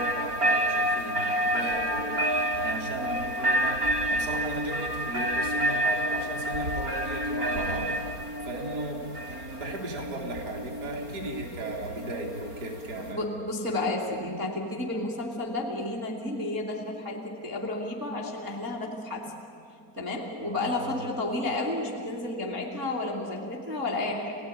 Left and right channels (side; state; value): left; late; 4.3 ms